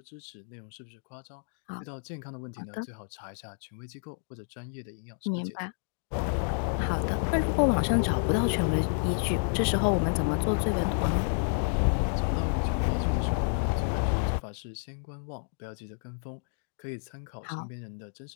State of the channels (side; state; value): right; silent; 58 dB below the other